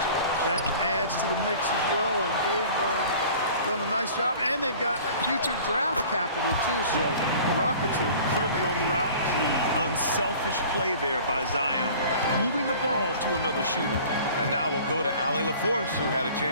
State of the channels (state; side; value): inverted; both; correlation -0.45